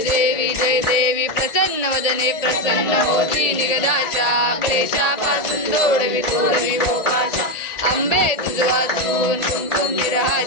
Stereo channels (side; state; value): right; late; 1.7 ms